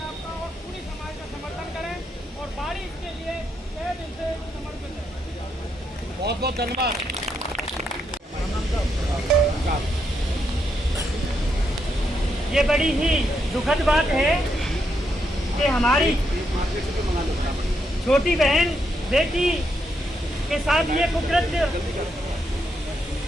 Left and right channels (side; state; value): both; normal; correlation 0.79